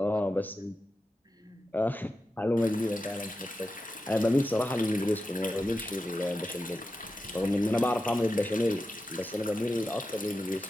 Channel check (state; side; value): normal; both; correlation 0.90